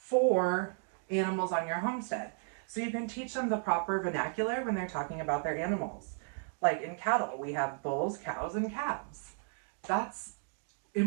animals on your homestead. So you can teach them the proper vernacular when they're talking about their animals. Like in cattle, we have bulls, cows, and calves. That's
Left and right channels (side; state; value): left; silent; 55 dB below the other